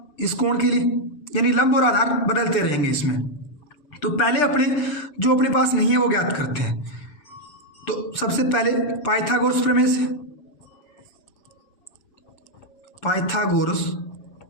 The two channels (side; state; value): right; late; 7.3 ms